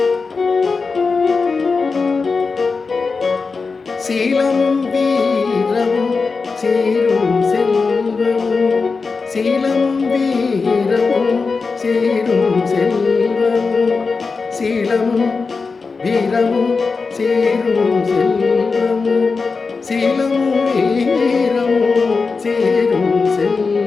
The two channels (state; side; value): quieter; right; 4.5 dB